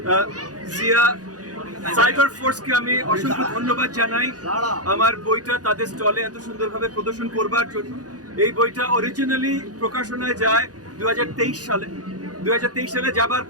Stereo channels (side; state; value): left; late; 0.68 ms